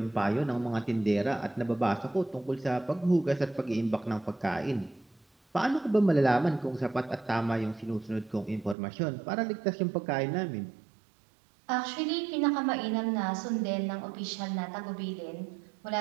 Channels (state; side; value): drops out; left; at 8.8 s